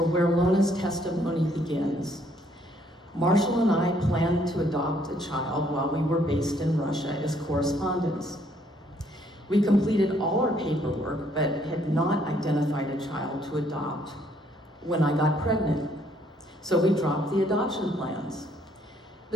where Lona's testimony begins. Marshall and I planned to adopt a child while we were based in Russia as correspondents. We completed all our paperwork, but had not identified a child to adopt when I got pregnant. So we dropped the adoption plans.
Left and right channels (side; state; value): both; normal; correlation 0.67